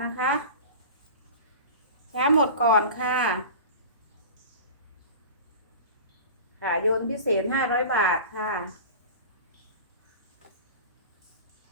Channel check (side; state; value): both; inverted; correlation -0.35